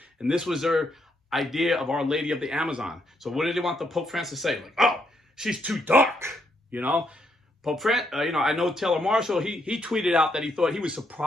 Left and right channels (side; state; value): both; normal; correlation 0.76